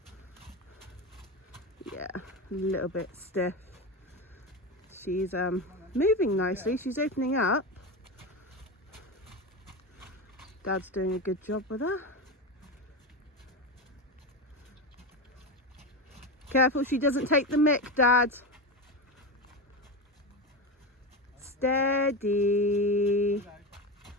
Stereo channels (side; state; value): both; normal; correlation 0.19